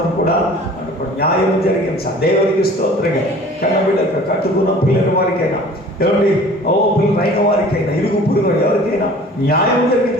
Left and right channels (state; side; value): normal; both; correlation 0.47